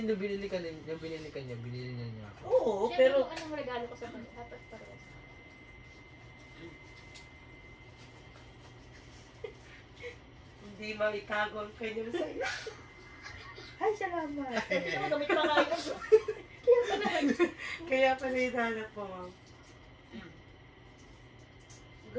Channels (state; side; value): identical; both; correlation 1.00